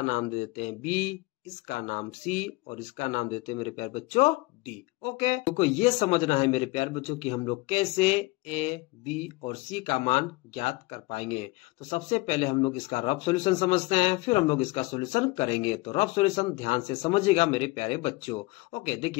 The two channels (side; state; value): right; quieter; 22.6 dB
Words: नाम दे देते हैं बी, इसका नाम सी और इसका नाम देते हैं मेरे प्यारे बच्चों डी। ओके, तो ये समझना है मेरे प्यारे बच्चों कि हम लोग कैसे ए, बी और सी का मान ज्ञात कर पाएंगे। तो सबसे पहले हम लोग इसका रफ सॉल्यूशन समझते हैं, फिर हम लोग इसका सॉल्यूशन करेंगे। तो रफ सॉल्यूशन ध्यान से समझिएगा मेरे प्यारे बच्चों। ओके,